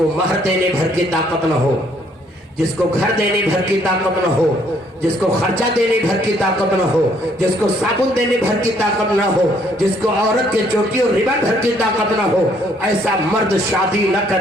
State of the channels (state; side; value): normal; both; correlation 0.66